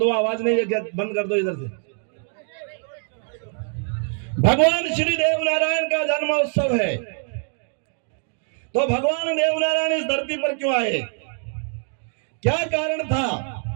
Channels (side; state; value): left; silent; 57 dB below the other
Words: आवाज नहीं है, बंद कर दो इधर से। भगवान श्री देवनारायण का जन्मोत्सव है, तो भगवान देवनारायण इस धरती पर क्यों आए, क्या कारण था,